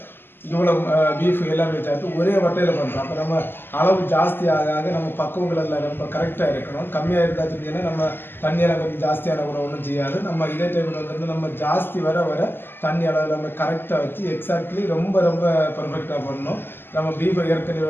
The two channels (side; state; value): right; late; 0.10 ms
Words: இவ்வளோ பீஃப் எல்லாமே சேர்த்து ஒரே வட்டையில் பண்ணுறோம். அப்போ நம்ம அளவு ஜாஸ்தி ஆக நம்ம பக்குவங்கள் எல்லாம் ரொம்ப கரெக்டாக இருக்கணும். கம்மியாக இருந்தால் சொன்னீங்கன்னா நம்ம தண்ணியெல்லாம் கொஞ்சம் ஜாஸ்தியான கூட ஒன்றும் செய்யாது. நம்ம இதே டைமில் வந்து நம்ம ஜாஸ்தி வர தண்ணி அளவு நம்ம கரெக்டாக வச்சு எக்ஸாக்ட்லி ரொம்ப பர்ஃபெக்டாக பண்ணணும். நம்ம பீஃபை